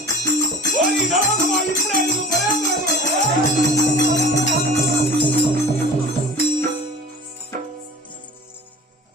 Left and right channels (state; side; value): normal; both; correlation 0.39